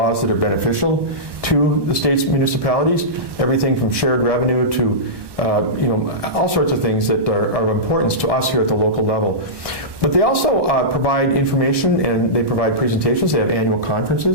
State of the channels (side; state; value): left; late; 1.1 ms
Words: that are beneficial to the state's municipalities, everything from shared revenue to all sorts of things that are of importance to us here at the local level. But they also provide information and they provide presentations. They have annual